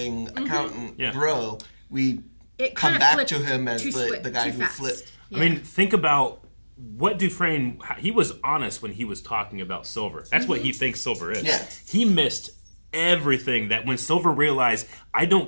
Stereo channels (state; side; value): inverted; both; correlation -1.00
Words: accountant grow. We come back to him as the guy who flipped. I mean, think about what Dufresne, he was honest when he was talking about Silver. That's what he thinks Silver is. Yeah. He missed everything that when Silver realized, I